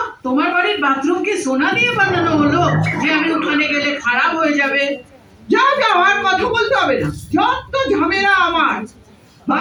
তোমার বাড়ির বাথরুম কি সোনা দিয়ে বানানো হলো যে আমি ওখানে গেলে খারাপ হয়ে যাবে? যাও যাও, আর কথা বলতে হবে না। যত ঝামেলা আমার।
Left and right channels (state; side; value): identical; both; correlation 1.00